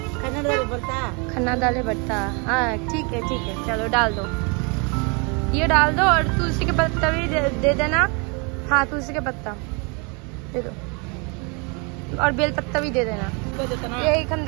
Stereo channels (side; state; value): left; quieter; 32.5 dB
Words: खन्ना डाले बढ़ता। हाँ ठीक है चलो डाल दो, ये डाल दो। और तुलसी के पत्ता भी दे देना। हाँ तुलसी के पत्ता दे दो, और बेल पत्ता भी दे देना। ये এখান